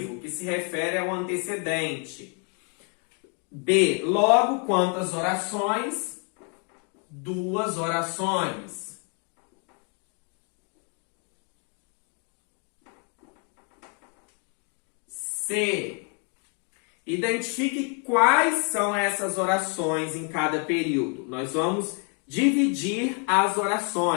que se refere ao antecedente. B. Logo, quantas orações? 2 orações. C. Identifique quais são essas orações em cada período. Nós vamos dividir as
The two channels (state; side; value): quieter; right; 38.8 dB